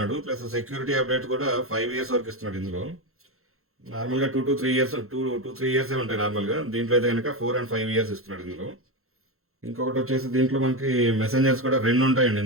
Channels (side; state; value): left; late; 0.62 ms